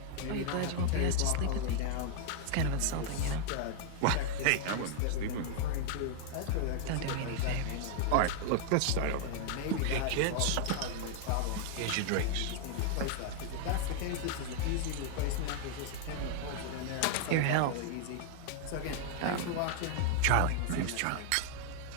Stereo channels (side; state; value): both; different; correlation 0.00